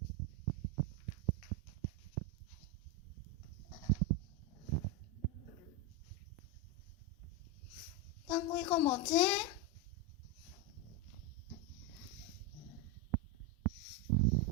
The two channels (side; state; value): both; normal; correlation 0.08